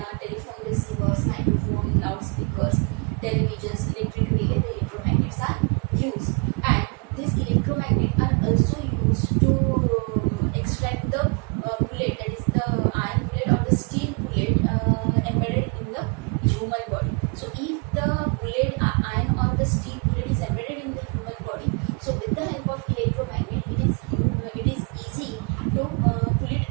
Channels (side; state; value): left; quieter; 35.3 dB